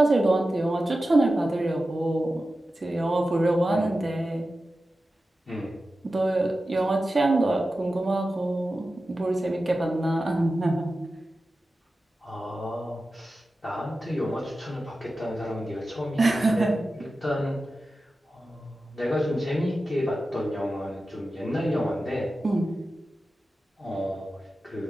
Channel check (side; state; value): both; normal; correlation 0.93